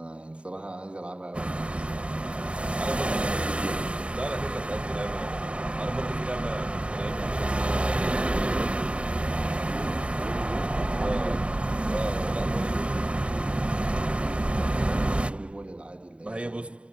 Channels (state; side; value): late; left; 0.059 ms